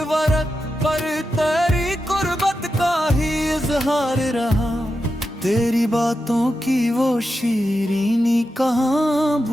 वरक पर तेरी कुर्बत का ही इजहार रहा। तेरी बातों की वो शीरीनी कहाँ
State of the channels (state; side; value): normal; both; correlation 0.89